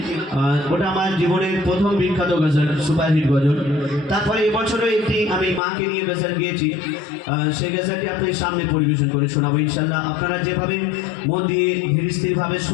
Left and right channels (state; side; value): drops out; right; at 5.6 s